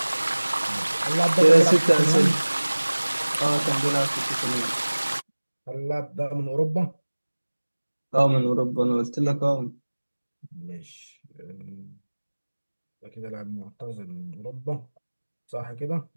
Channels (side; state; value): both; inverted; correlation -1.00